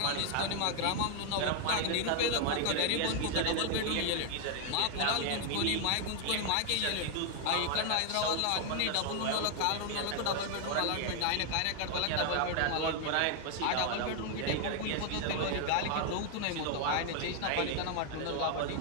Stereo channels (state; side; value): different; both; correlation 0.00